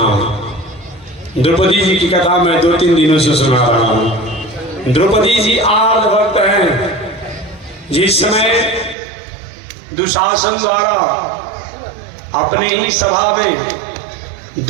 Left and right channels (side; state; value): left; drops out; at 9.0 s